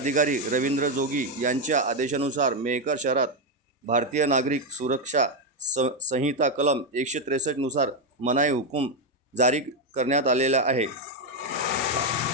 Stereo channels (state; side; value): normal; both; correlation 0.05